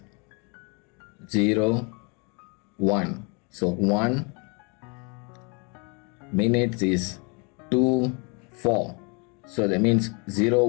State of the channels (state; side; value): quieter; right; 33.1 dB